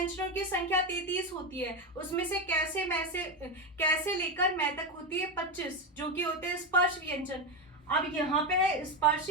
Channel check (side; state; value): both; normal; correlation 0.13